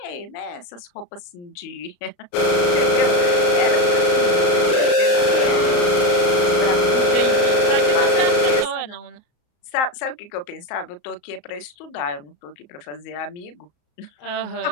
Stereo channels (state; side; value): late; right; 34 ms